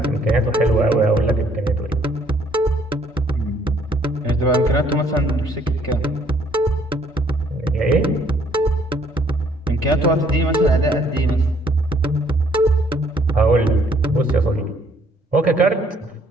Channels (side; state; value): both; normal; correlation 0.64